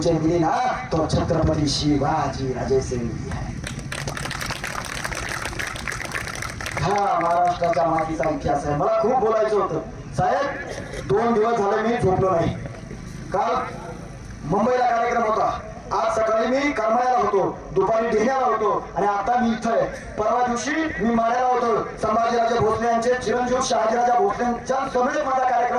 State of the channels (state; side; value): identical; both; correlation 1.00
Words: मिली ना तो छत्रपती शिवाजी राजे से मिली है. हा महाराष्ट्राच्या मातीचा इतिहास आहे. मला खूप बोलायचं होतं साहेब. 2 दिवस झाले मी झोपलो नाही. काल मुंबईला कार्यक्रम होता. आज सकाळी मी करमाळ्याला होतो, दुपारी ढेण्याला होतो आणि आता मी इथं आहे. परवा दिवशी मी माड्याला होतो. संभाजीराजे भोसले यांचे चिरंजीव शहाजीराजा भोसलेंच्या समेत माझा